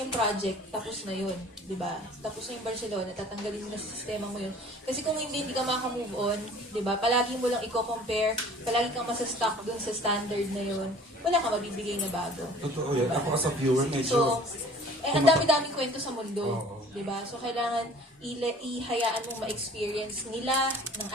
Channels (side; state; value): both; normal; correlation 0.49